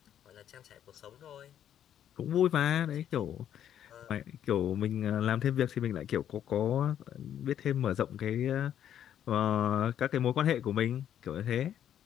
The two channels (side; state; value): right; quieter; 10.2 dB